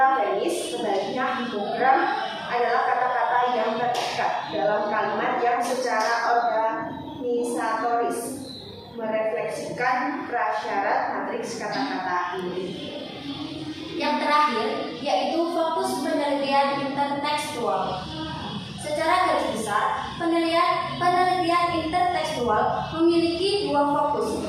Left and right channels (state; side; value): identical; both; correlation 1.00